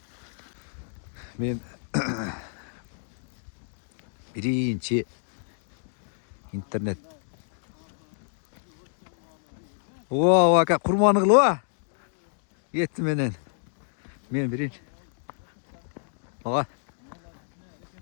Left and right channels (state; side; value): silent; right; digital silence